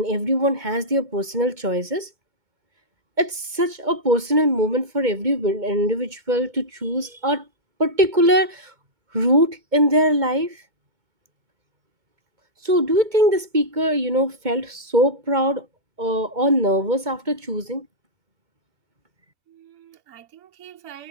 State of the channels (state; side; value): late; left; 2.2 ms